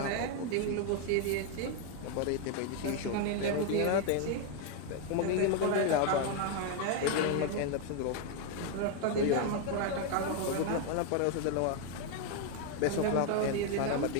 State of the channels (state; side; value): different; both; correlation 0.01